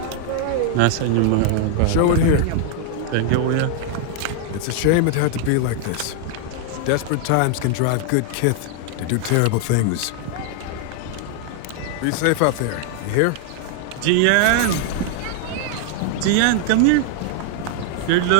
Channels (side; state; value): both; different; correlation 0.00